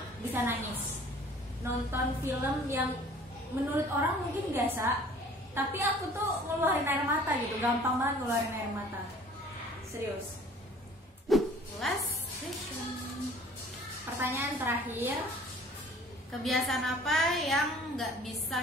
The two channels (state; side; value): normal; both; correlation 0.50